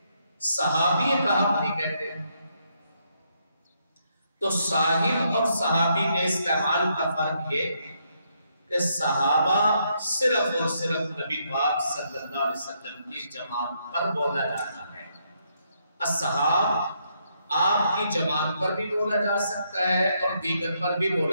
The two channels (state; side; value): inverted; both; correlation -0.76